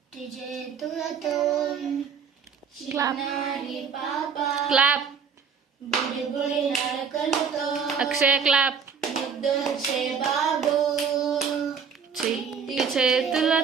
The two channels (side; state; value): left; quieter; 6.3 dB